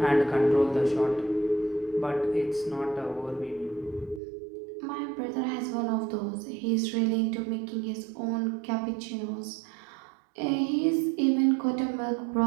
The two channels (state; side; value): drops out; left; at 4.2 s